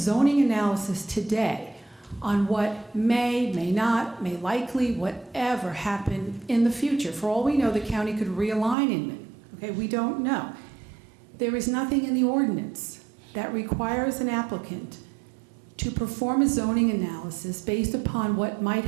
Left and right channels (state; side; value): drops out; left; at 8.8 s